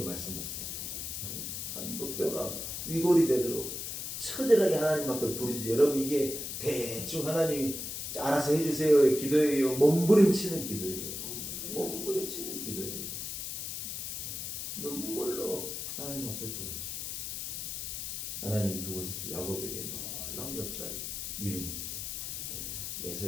말씀하셨습니다. 한도뼈가 위골이 되도록 처절하게 하나님 앞에 부르짖어요. 여러분, 이게 대충 하나님이 알아서 해주세요의 기도예요? 몸부림치는 기도예요. 몸부림치는 기도예요. 눈물로 하나님 앞에 부르짖어요. 하나님 그곳에서 야곱에게 놀라운 역사를 이루는 거예요.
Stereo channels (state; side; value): noise; left; hiss, 5 dB below the sound